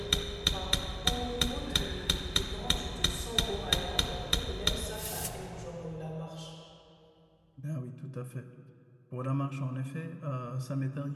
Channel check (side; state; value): both; identical; correlation 1.00